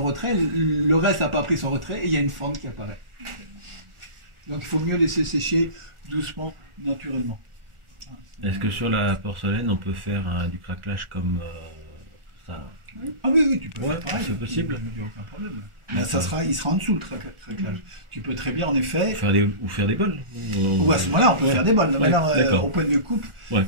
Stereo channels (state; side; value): late; left; 1.4 ms